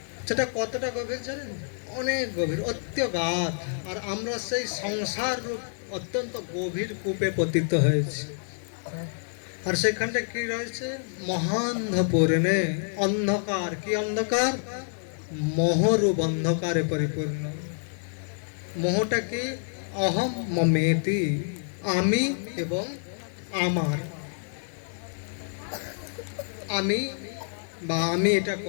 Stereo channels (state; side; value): silent; right; digital silence